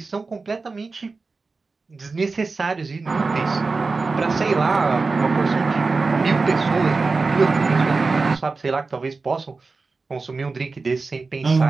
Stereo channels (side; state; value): left; quieter; 4.0 dB